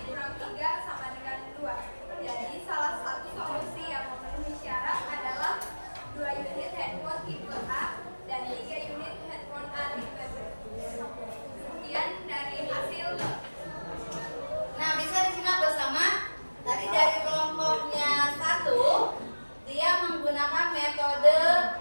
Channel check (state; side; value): inverted; both; correlation -1.00